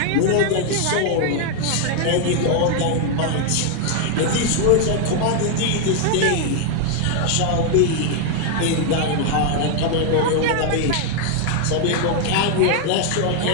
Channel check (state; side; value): different; both; correlation 0.00